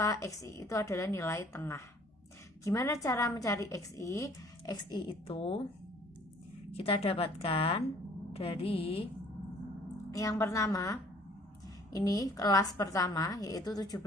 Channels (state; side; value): normal; both; correlation 0.56